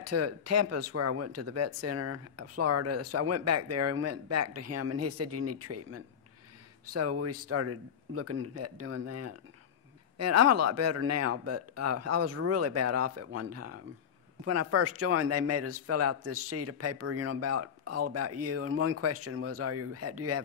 to Tampa, where I went to the vet center, Florida. So I went back there and went back to him, and he said, you need treatment. So we started looking at doing that. And I'm a lot better now, but I was really bad off at one time. When I first joined, they made us fill out this sheet of paper, you know, all about you. And one question was, do you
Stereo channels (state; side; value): quieter; right; 7.9 dB